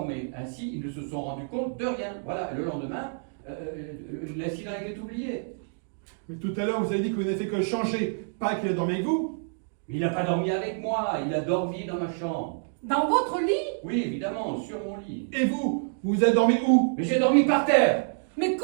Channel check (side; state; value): left; silent; digital silence